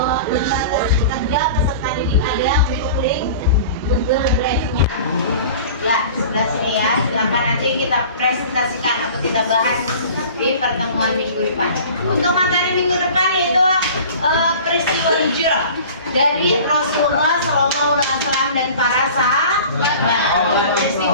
lembar kerja peserta didik ada untuk link Google Drive-nya. Ya, sebelah sini ya. Silakan nanti kita presentasikan atau kita bahas di pertemuan minggu depan. Untuk materi minggu depan yaitu peristiwa hijrah dari Rasulullah SAW dan para sahabat.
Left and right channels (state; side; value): inverted; both; correlation -0.41